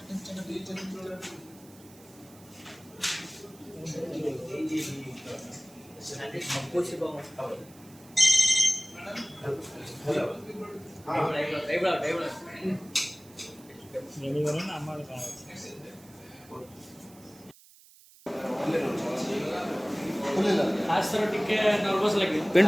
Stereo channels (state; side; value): noise; right; hiss, 24 dB below the sound